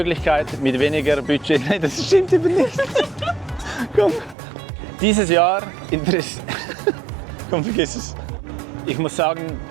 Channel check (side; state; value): left; drops out; at 4.4 s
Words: mit weniger Budget. Nein, das stimmt eben nicht. Komm. Dieses Jahr Komm, vergiss es. Ich muss sagen,